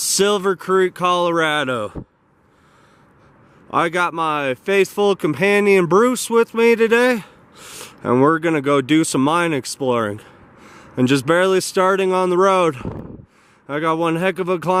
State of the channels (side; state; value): both; identical; correlation 1.00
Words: Creek, Colorado. I got my faithful companion, Bruce, with me today, and we're gonna go do some mine exploring. And just barely starting on the road. I got one heck of a